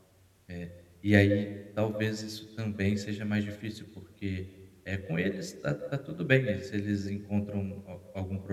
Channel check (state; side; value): identical; both; correlation 1.00